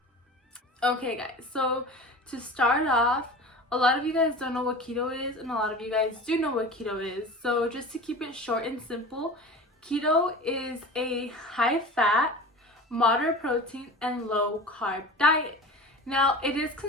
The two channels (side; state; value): both; normal; correlation 0.35